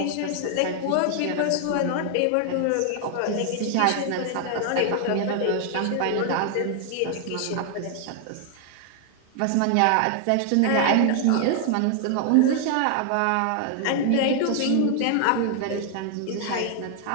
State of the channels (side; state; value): both; different; correlation 0.00